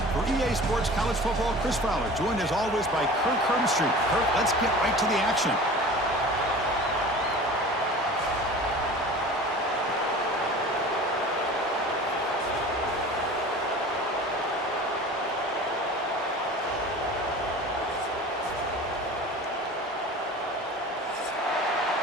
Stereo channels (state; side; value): normal; both; correlation 0.39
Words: For EA Sports College Football, Chris Fowler, joined as always by Kirk Herbstreit. Kirk, let's get right to the action.